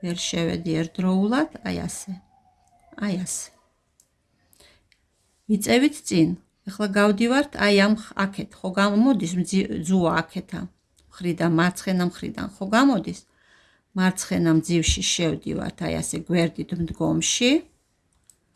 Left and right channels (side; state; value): both; identical; correlation 1.00